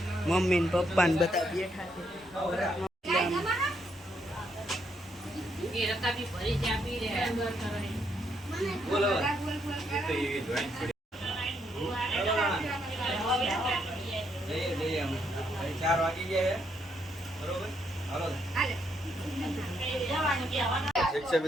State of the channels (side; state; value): both; normal; correlation 0.75